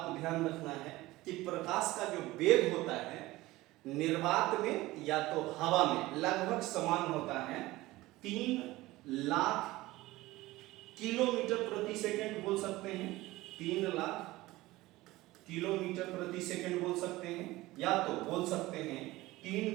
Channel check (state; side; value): quieter; left; 18.7 dB